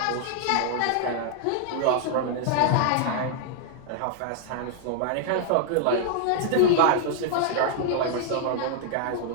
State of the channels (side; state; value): both; different; correlation -0.01